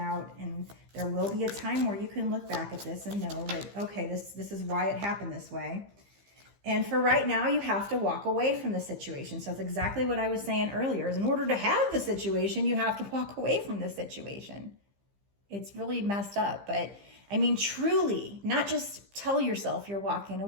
and there will be a time where you can look back at this and know that, okay, this is why it happened this way. And for right now, you have to walk away from the situation. So it's exactly what I was saying earlier, is in order to have the situation, you have to walk away from the situation. It's really messed up, but I mean, truly, not just tell yourself you're walking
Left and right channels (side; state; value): left; late; 15 ms